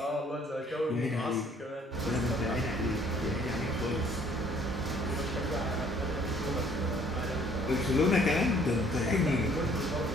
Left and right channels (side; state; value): both; normal; correlation 0.60